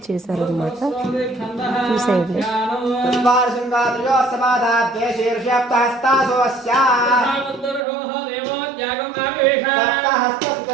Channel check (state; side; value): drops out; left; at 7.9 s